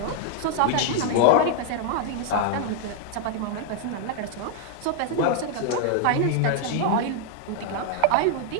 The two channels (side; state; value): both; different; correlation 0.00